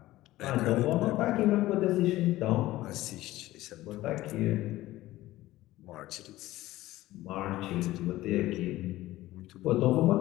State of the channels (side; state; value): right; quieter; 16.5 dB